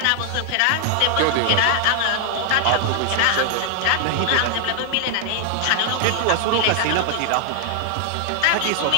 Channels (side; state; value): both; different; correlation 0.00